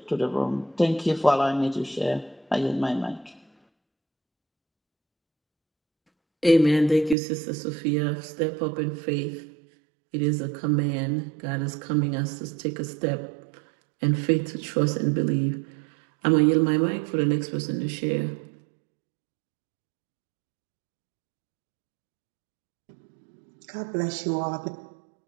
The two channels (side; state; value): left; drops out; at 7.2 s